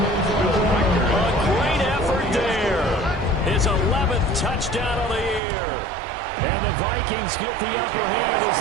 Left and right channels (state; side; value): drops out; left; at 5.4 s